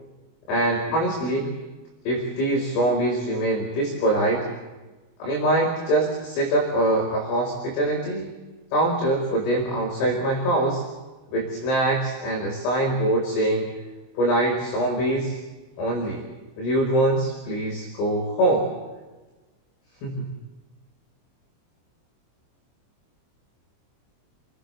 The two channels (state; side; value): late; right; 25 ms